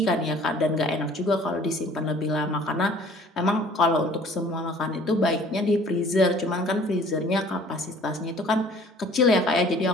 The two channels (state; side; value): normal; both; correlation 0.52